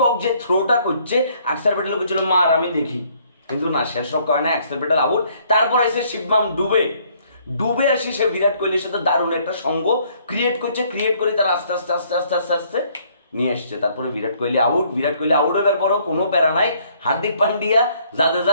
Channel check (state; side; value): inverted; both; correlation -0.64